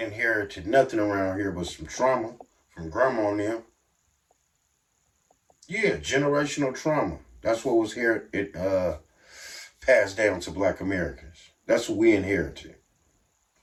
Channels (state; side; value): identical; both; correlation 1.00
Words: inherited nothing around here but some trauma from grandma and them. Yeah, generational trauma. That's what was here. It passed down to Black Americans. That's what we inherited.